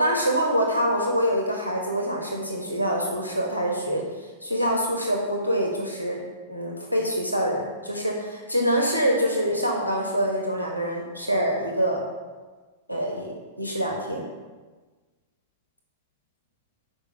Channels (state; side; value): inverted; both; correlation -0.60